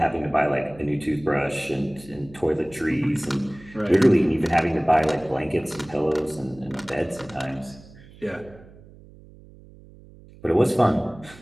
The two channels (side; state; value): right; noise; hum, 22 dB below the sound